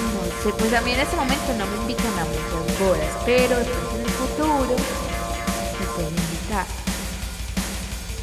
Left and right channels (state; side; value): identical; both; correlation 1.00